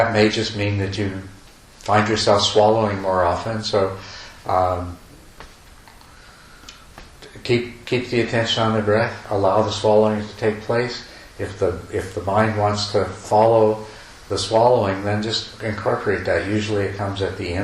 may just mean that you find yourself swallowing more often. So keep the attention on the breath. Allow the swallowing to take place. If the mind wants to follow the swallowing, then just incorporate that. Usually it comes at the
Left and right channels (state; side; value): identical; both; correlation 1.00